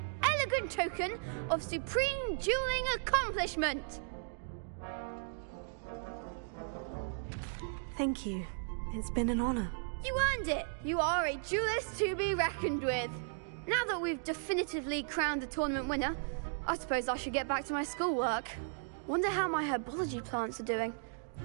elegant token of supreme dueling accomplishment. Thank you. It's been an honor. You earned it. You are a duelist to be reckoned with. Now that we've definitively crowned the tournament winner, I suppose I should get back to my schoolwork. Wonder how my herbology plants are doing.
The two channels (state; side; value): silent; left; digital silence